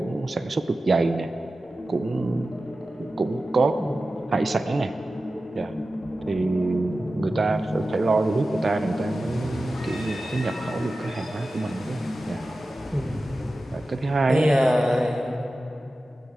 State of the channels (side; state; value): both; normal; correlation 0.94